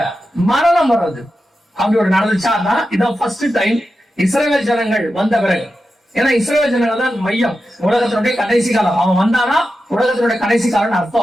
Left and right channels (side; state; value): both; normal; correlation 0.90